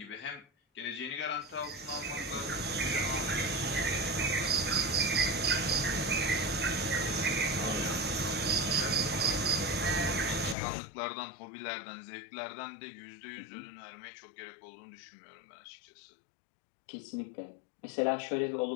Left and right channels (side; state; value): right; drops out; at 10.6 s